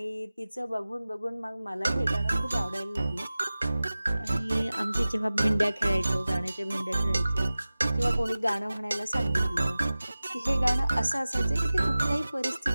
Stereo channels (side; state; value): both; inverted; correlation -0.96